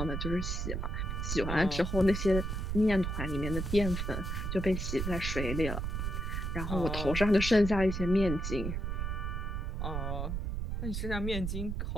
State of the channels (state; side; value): noise; right; rumble, 2 dB below the sound